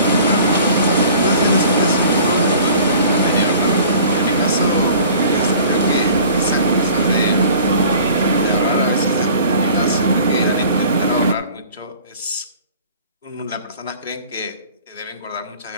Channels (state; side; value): inverted; both; correlation -0.47